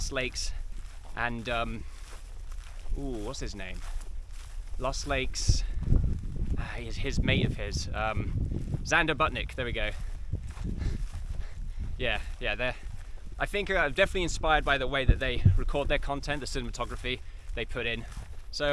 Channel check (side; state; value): both; identical; correlation 1.00